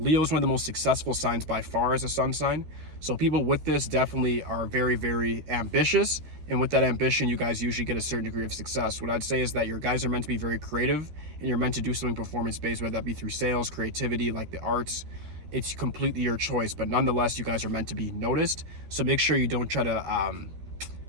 is one of the most successful signs by far as a sun sign. So people with this definitely are very, very ambitious. And with that ambition, you guys usually get a certain degree of success. What I'd say is that your guys are meant to be very creative, and you're meant to do something performance-based, whether that be through sales, creativity, like the arts. It's completely your choice, but nonetheless, you guys are meant to be noticed. So make sure you don't try to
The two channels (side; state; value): left; late; 13 ms